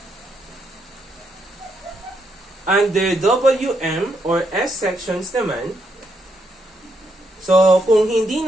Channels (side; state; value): both; normal; correlation 0.78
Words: under WM or S sections naman, So, kung hindi